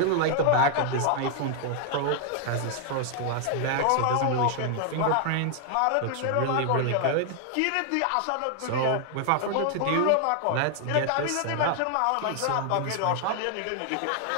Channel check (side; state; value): both; different; correlation 0.00